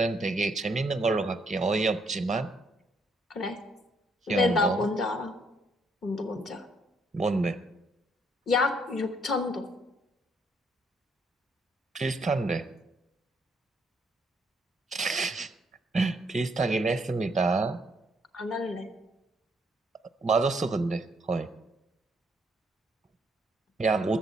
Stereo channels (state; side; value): normal; both; correlation 0.71